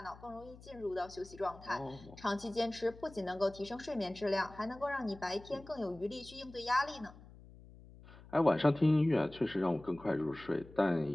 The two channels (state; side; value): noise; left; hum, 20 dB below the sound